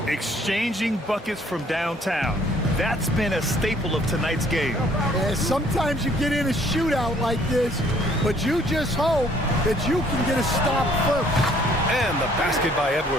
Exchanging buckets from downtown. That's been a staple of tonight's game. Yeah, sometimes you get in a shootout like this, but you just hope that you can get a stop first. And the basket by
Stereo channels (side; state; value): both; normal; correlation 0.61